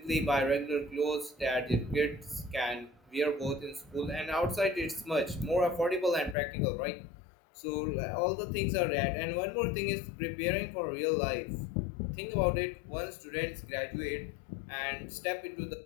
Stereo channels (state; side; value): drops out; right; at 6.4 s